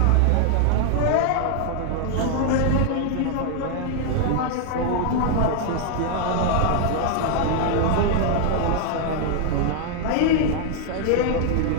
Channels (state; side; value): different; both; correlation 0.00